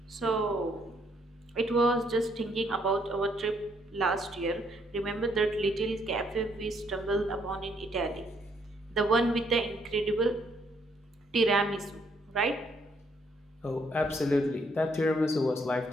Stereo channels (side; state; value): both; normal; correlation 0.70